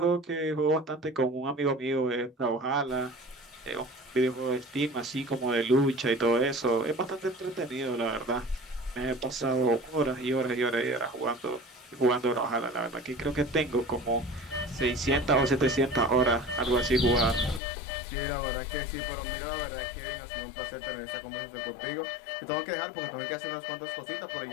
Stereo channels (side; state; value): right; drops out; at 17.6 s